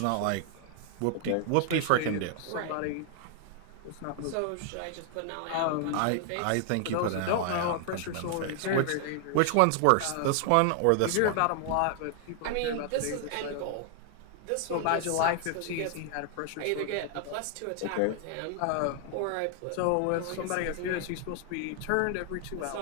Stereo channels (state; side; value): different; both; correlation 0.00